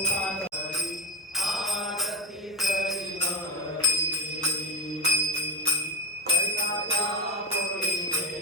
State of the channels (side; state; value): both; normal; correlation 0.15